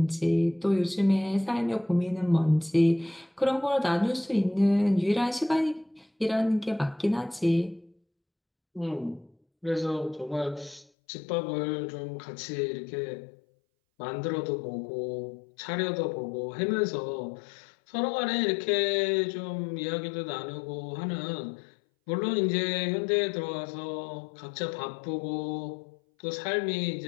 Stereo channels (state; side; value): drops out; right; at 10.9 s